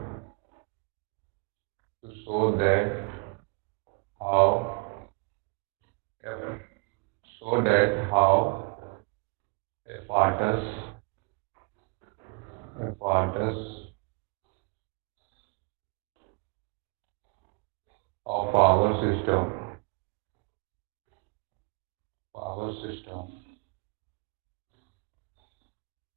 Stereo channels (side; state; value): left; quieter; 30.5 dB